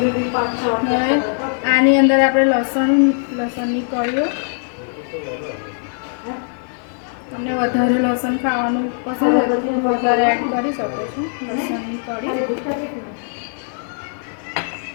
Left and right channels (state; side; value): silent; right; 58 dB below the other